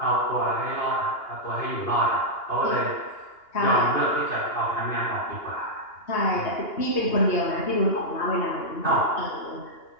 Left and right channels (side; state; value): right; late; 2.8 ms